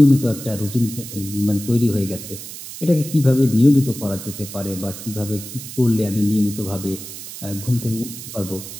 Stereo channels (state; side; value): noise; right; hiss, 11 dB below the sound